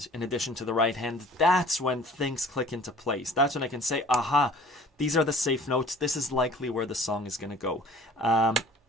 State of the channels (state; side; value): normal; both; correlation 0.49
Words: in addition to the right hand, that's when things click into place. That's when I can say, aha, these are the safe notes. This is likely where the song is going to go.